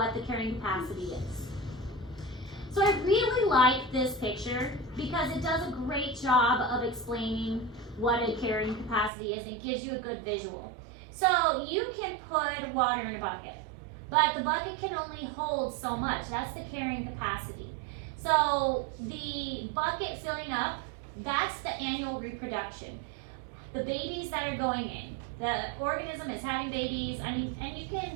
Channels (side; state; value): left; drops out; at 9.1 s